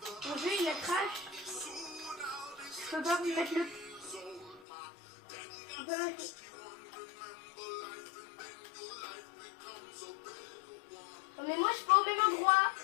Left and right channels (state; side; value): drops out; right; at 4.6 s